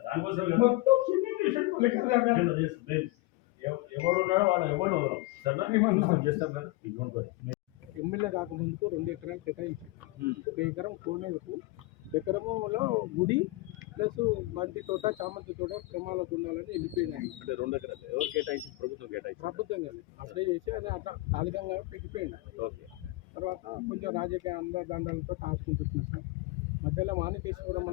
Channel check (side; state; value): right; quieter; 20.5 dB